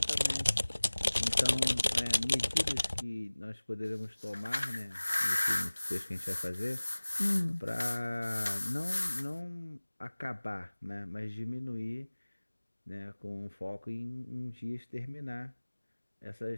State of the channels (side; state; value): both; inverted; correlation -1.00